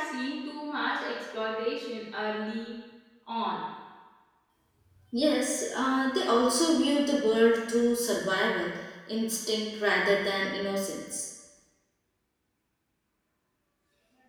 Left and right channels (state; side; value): identical; both; correlation 1.00